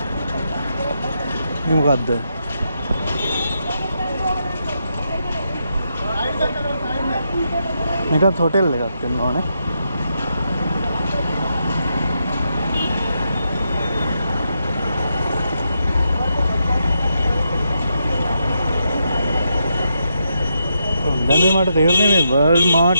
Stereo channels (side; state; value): both; inverted; correlation -0.82